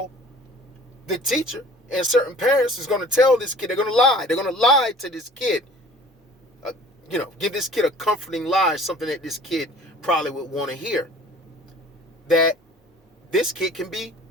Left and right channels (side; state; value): both; normal; correlation 0.48